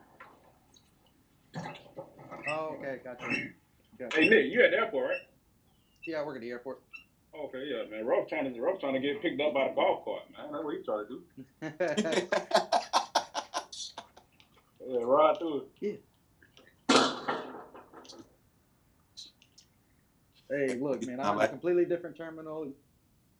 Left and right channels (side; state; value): both; identical; correlation 1.00